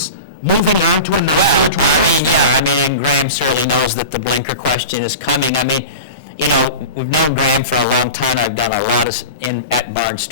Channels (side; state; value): both; inverted; correlation -0.31